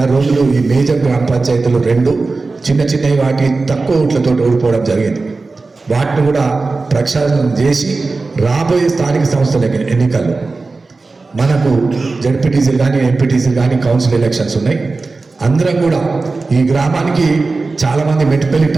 రోజులు ఈ మేజర్ గ్రామ పంచాయతీలు 2 చిన్న చిన్నవి వాటి తక్కువ ఓట్లతో ఓడిపోవడం జరిగింది. వాటిని కూడా ప్రక్షాళన చేసి రాబోయే స్థానిక సంస్థల ఎన్నికల్లో మనకు జడ్పీటీసీలు కానీ, ఎంపీటీసీలు కానీ, కౌన్సిల్ ఎలక్షన్స్ ఉన్నాయి. అందరం కూడా ఈ గ్రామానికి చాలామంది మెట్టుపల్లి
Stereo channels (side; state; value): left; quieter; 3.8 dB